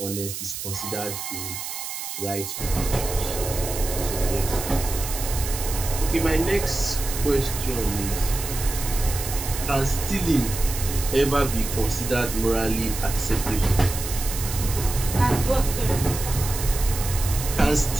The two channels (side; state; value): right; noise; hiss, 7 dB below the sound